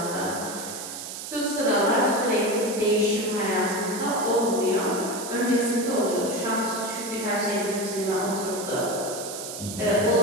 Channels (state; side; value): noise; right; hiss, 9 dB below the sound